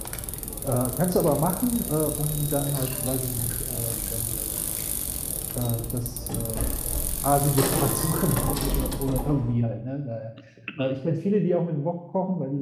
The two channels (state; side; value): identical; both; correlation 1.00